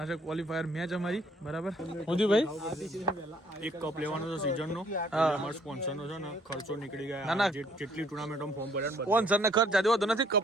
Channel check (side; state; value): both; normal; correlation 0.63